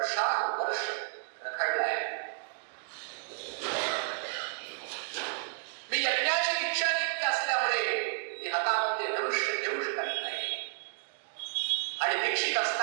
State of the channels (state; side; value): silent; left; digital silence